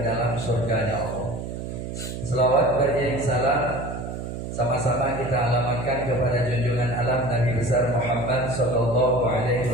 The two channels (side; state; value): right; noise; hum, 7 dB below the sound